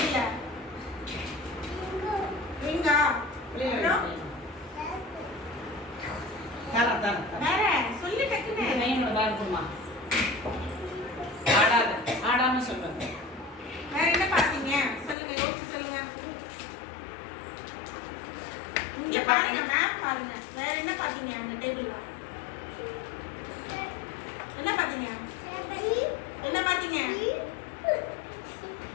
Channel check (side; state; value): right; drops out; at 15.2 s